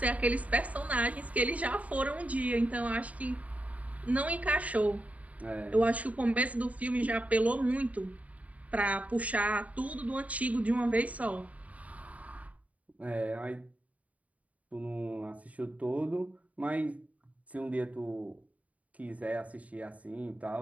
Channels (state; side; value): late; left; 0.069 ms